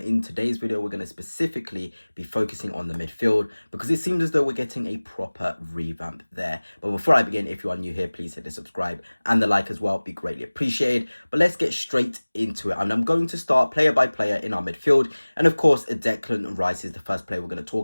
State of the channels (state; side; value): inverted; both; correlation -1.00